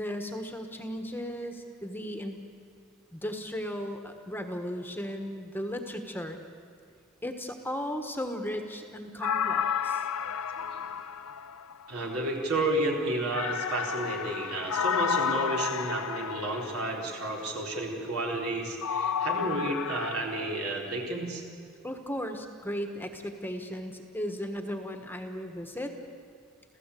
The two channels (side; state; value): both; normal; correlation 0.38